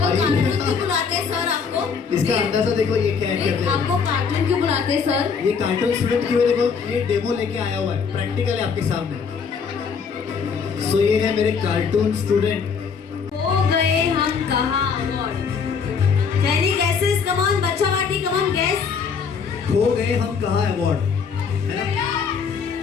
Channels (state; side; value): quieter; right; 6.0 dB